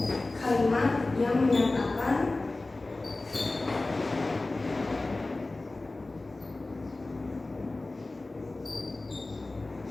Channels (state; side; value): quieter; right; 3.1 dB